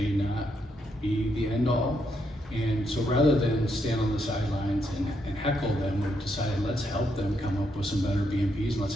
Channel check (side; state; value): both; normal; correlation 0.78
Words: not be the end all. And so rather than stand on the sidelines and heckle them, we've decided let's help them come up with some better BMPs and let's